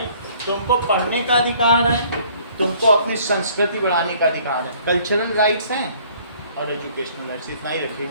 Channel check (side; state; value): both; inverted; correlation -0.58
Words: तुमको पढ़ने का अधिकार है, तुमको अपनी संस्कृति बढ़ाने का अधिकार है। कल्चरल राइट्स हैं और एजुकेशनल राइट्स, इतना ही रखिए।